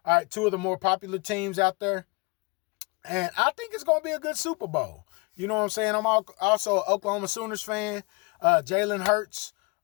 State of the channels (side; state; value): right; quieter; 28.0 dB